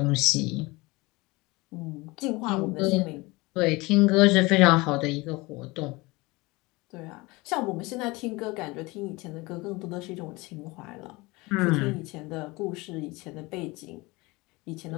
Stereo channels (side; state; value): right; quieter; 23.3 dB